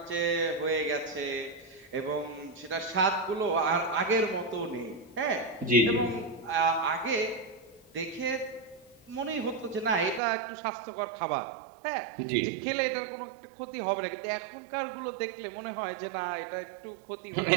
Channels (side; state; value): left; drops out; at 10.2 s